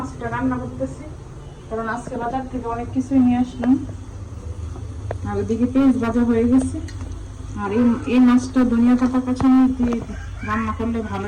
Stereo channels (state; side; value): identical; both; correlation 1.00